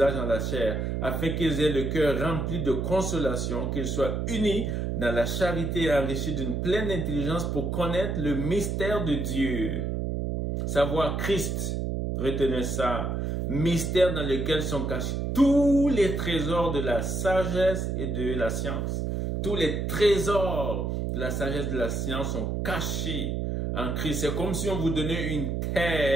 dans la chair, afin qu'ils aient le cœur rempli de consolation, qu'ils soient unis dans la charité et enrichis d'une pleine intelligence pour connaître le mystère de Dieu. » Savoir Christ, retenez ça, mystère dans lequel sont cachés tous les trésors de la sagesse et de la science. Tous les trésors de la sagesse et de la science sont cachés en Christ. C'est comme si on vous donnait une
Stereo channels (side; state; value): right; noise; hum, 1 dB below the sound